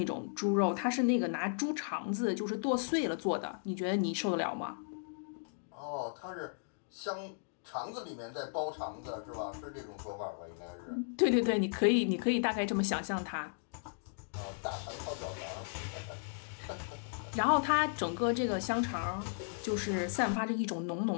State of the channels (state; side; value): silent; right; digital silence